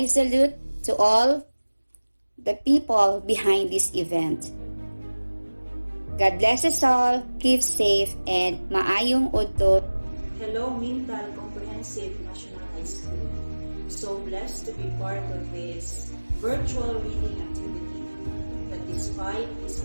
salute to all the people behind this event. God bless us all, keep safe, and maayong udto. Hello, Mintal Comprehensive National High School. So blessed to be part of this virtual reading activity. That despite this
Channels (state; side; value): inverted; both; correlation -1.00